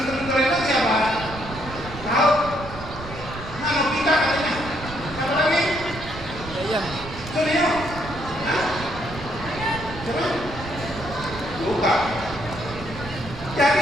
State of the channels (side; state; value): right; noise; rumble, 12 dB below the sound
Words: Doraemon siapa? Tahu? Nah, Nobita katanya. Siapa lagi? Suneo. Coba buka.